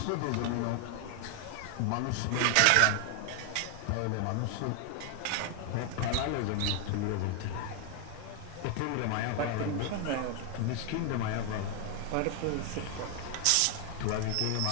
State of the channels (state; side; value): different; both; correlation 0.00